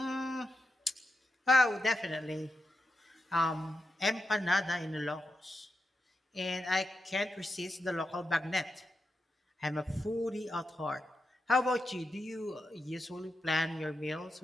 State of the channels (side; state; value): both; normal; correlation 0.87